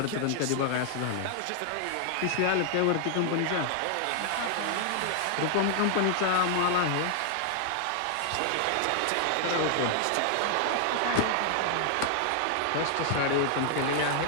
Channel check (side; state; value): both; different; correlation 0.00